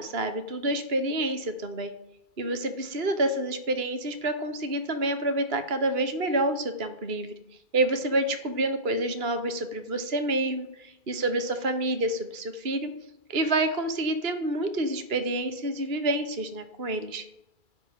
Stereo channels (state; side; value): late; left; 2.3 ms